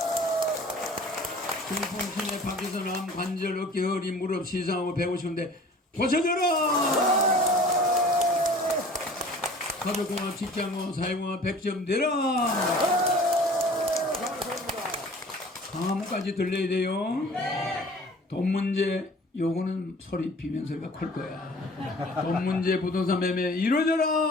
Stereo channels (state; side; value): normal; both; correlation 0.47